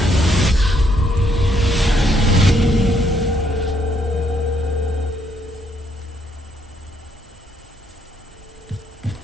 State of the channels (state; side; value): normal; both; correlation 0.72